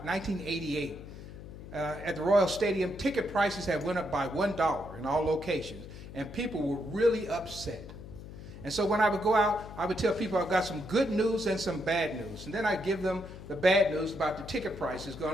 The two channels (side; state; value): left; noise; hum, 13 dB below the sound